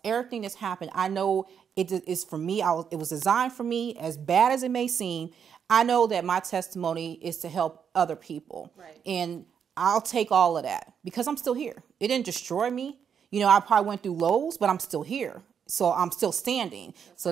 everything that's happened, I know it is for me. It was designed for me, as bad as it may seem. I know that my testimony is to help other people. Right. And I'll take all of that because I'm still here. It didn't destroy me. I probably went through lows, but I'm still here. So I'm still standing. That's right.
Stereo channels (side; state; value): left; quieter; 7.5 dB